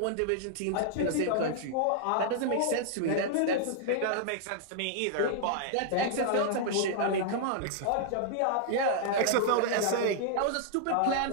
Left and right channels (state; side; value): different; both; correlation -0.01